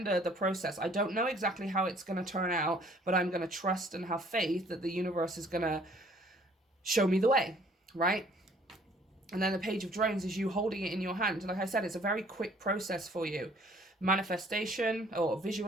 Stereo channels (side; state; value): both; normal; correlation 0.58